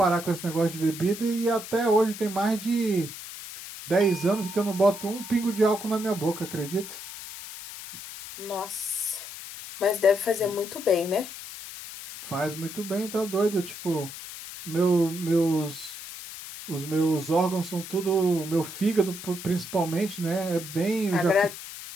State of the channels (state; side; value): noise; left; hiss, 11 dB below the sound